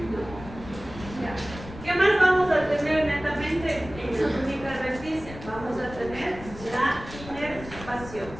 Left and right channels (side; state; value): left; noise; rumble, 14 dB below the sound